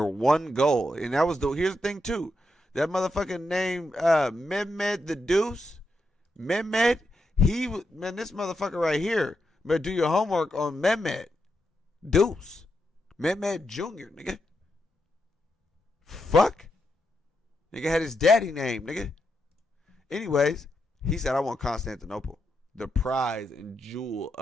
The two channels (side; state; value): both; normal; correlation 0.84